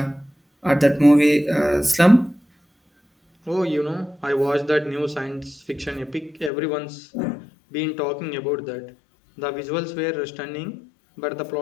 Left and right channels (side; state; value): right; drops out; at 6.5 s